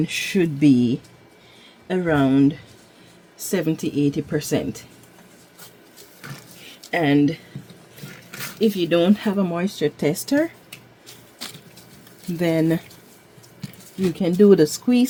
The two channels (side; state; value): both; identical; correlation 1.00